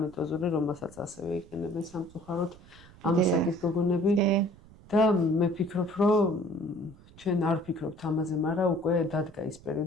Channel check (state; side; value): noise; right; rumble, 23 dB below the sound